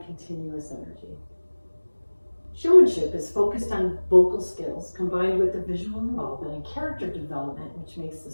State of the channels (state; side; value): inverted; both; correlation -1.00